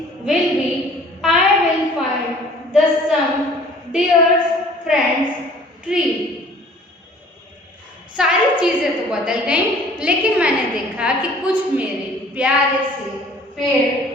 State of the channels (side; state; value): both; normal; correlation 0.51